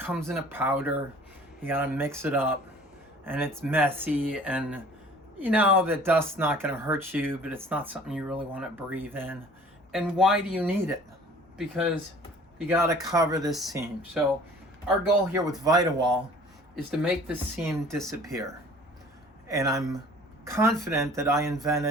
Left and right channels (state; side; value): normal; both; correlation 0.49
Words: in a powder, you gotta mix it up, and it's messy, and you know that dust's not gonna hurt you, but it's not something you really wanna breathe in. And why do you need it? Because you gotta cover this seam. So our goal here with ViteWall is to make this seam disappear. And I'm confident that I